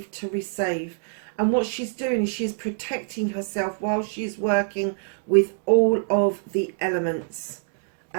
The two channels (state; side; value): silent; left; digital silence